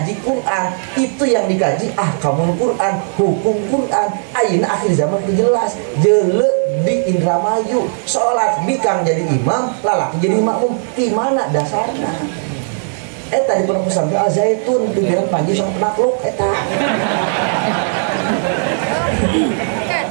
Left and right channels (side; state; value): left; silent; digital silence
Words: Quran itu yang dikaji ahkamul Quran, hukum Quran. Ayeuna akhir zaman teu jelas, jeule di Indramayu salat bikang jadi imam, lalaki jadi makmum. Di mana dasarna? Eta di Pondok Pesantren Al Zaitun pimpinan Panji sama penakluk eta.